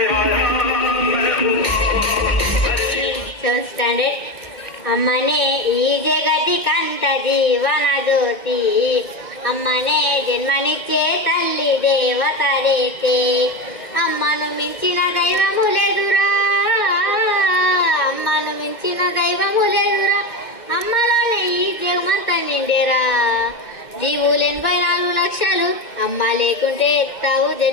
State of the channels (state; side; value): late; right; 2.1 ms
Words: స్టాండర్డ్ అమ్మనే ఈ జగతి కంట జీవన జ్యోతి, అమ్మనే జన్మనిచ్చే తల్లి దేవత రేతే, అమ్మను మించిన దైవము లేదురా, అమ్మను మించిన దైవము లేదురా, అమ్మలోనే ఈ జగమంత నిండేరా. జీవులు 84 లక్షలు, అమ్మ లేకుంటే ఎత్తావు